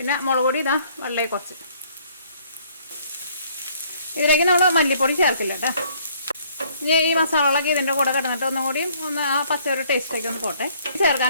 മുളക് പൊടി ഇതാ വളരെ കുറച്ച്. ഇതിലേക്ക് നമ്മൾ മല്ലിപ്പൊടി ചേർക്കില്ല കേട്ടോ. ഇനി ഈ മസാലകളൊക്കെ ഇതിൻ്റെ കൂടെ കിടന്നിട്ട് ഒന്നും കൂടി ആ പച്ച ഒരു ടേസ്റ്റൊക്കെ ഒന്ന് പോട്ടെ.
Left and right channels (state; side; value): inverted; both; correlation -0.62